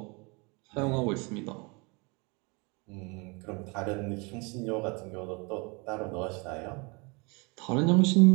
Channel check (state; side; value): quieter; left; 29.6 dB